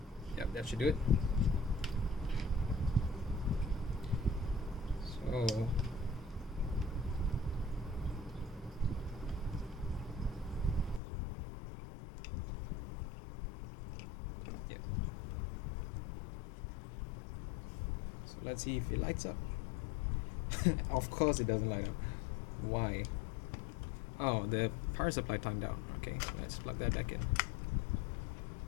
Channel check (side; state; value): right; drops out; at 11.0 s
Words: That should do it. So yeah. So let's see if it lights up. Of course it doesn't light up. Why? Oh, the power supply timed out. Okay, let's plug that back in.